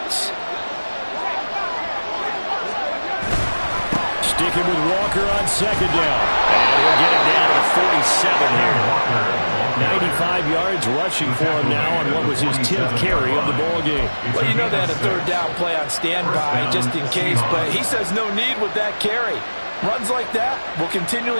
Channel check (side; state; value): both; inverted; correlation -1.00